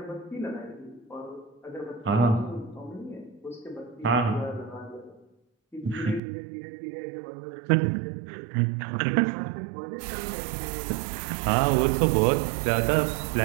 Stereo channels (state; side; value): drops out; left; at 6.2 s